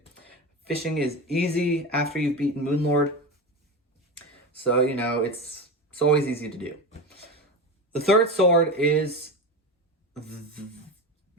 Fishing is easy after you've beaten Moonlord. So, it's always easy to do. The third sword is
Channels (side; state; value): both; normal; correlation 0.22